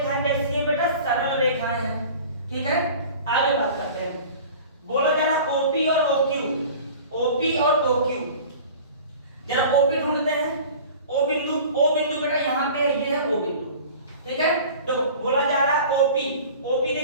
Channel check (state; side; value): inverted; both; correlation -0.42